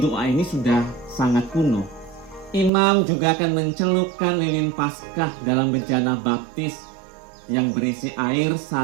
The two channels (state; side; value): drops out; left; at 2.7 s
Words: doa ini sudah sangat kuno. Imam juga akan mencelupkan lilin Paskah dalam bejana baptis yang berisi air